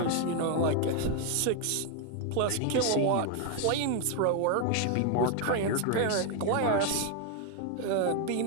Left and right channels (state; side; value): different; both; correlation 0.01